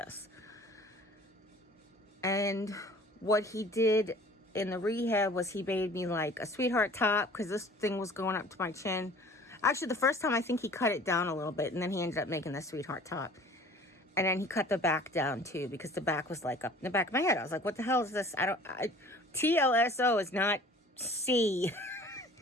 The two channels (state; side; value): normal; both; correlation 0.48